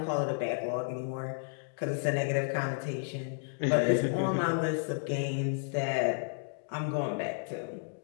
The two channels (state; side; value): silent; right; digital silence